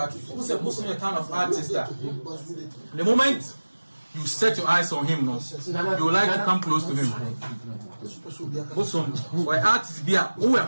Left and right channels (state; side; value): inverted; both; correlation -1.00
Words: who's a Bosom kind of artist that the moment you set your eyes on him, no, you like to come close to him. Bosom, or artists be